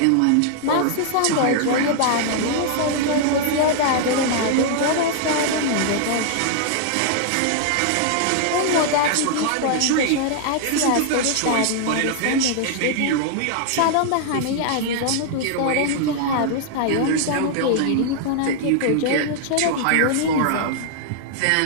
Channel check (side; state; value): both; different; correlation -0.01